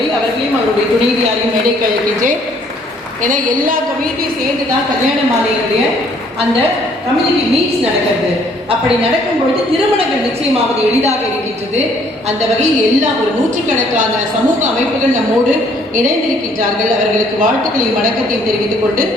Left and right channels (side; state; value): both; normal; correlation 0.63